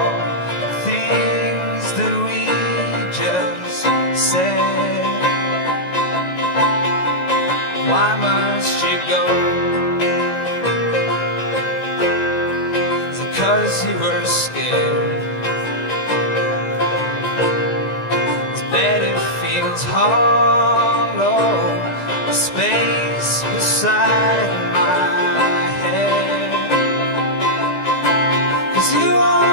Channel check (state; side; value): late; right; 17 ms